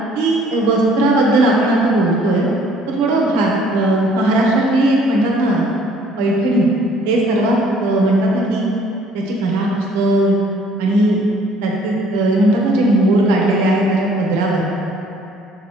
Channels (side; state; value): both; normal; correlation 0.58